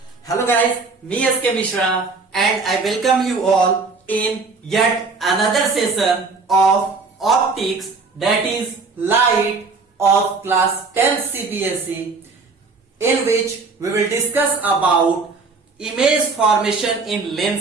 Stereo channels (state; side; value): quieter; left; 4.2 dB